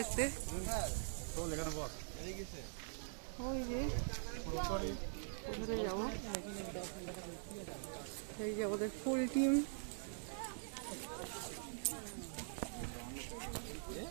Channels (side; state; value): left; silent; digital silence